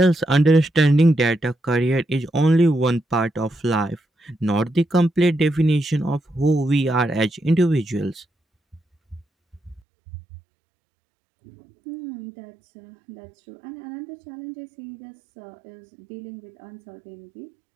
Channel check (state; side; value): drops out; left; at 9.8 s